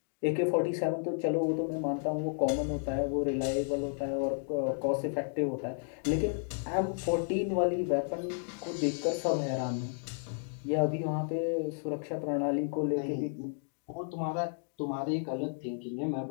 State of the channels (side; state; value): right; silent; digital silence